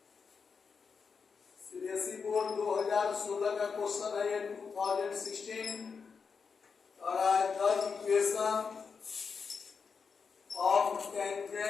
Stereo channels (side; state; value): right; quieter; 5.6 dB